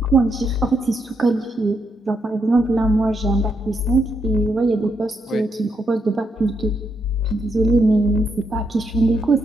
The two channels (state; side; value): normal; both; correlation 0.79